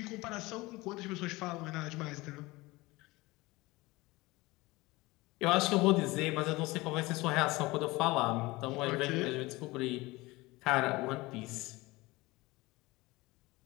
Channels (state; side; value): quieter; right; 21.4 dB